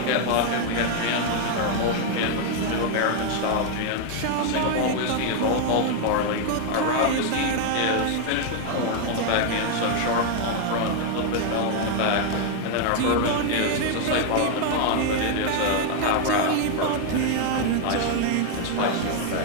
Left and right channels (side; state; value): both; different; correlation 0.00